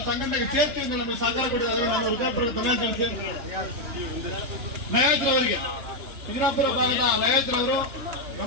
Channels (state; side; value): late; left; 3.2 ms